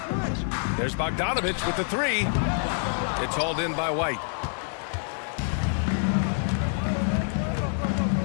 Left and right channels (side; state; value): right; silent; 60 dB below the other